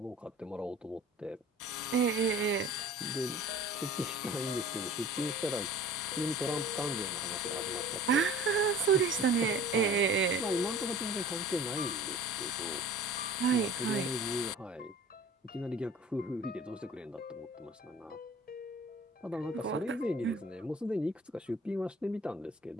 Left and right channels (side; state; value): both; normal; correlation 0.44